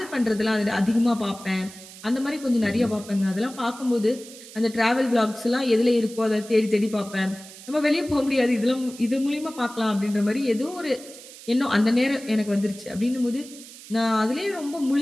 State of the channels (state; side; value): noise; right; hiss, 17 dB below the sound